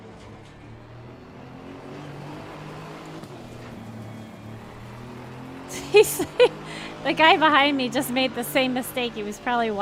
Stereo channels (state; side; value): identical; both; correlation 1.00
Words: The guy behind me just made the same mistake. He was probably